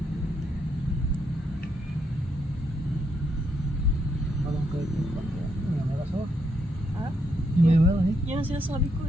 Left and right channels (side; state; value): both; normal; correlation 0.77